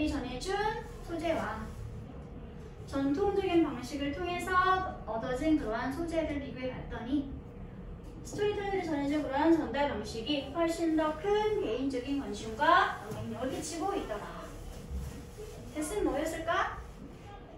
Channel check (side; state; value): both; identical; correlation 1.00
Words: 전해준 소재와 전통적인 방식을 통해서 얻어진 그러한 소재를 비교해 봤더니 스토리텔러들이 전해준 그러한 전달 방식이 훨씬 더 큰 개인적인 관심과 영향력을 끼치고 있더라. 대신 뭐였을까?